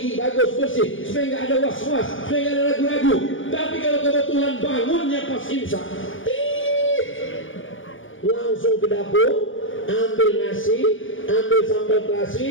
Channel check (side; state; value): right; late; 0.57 ms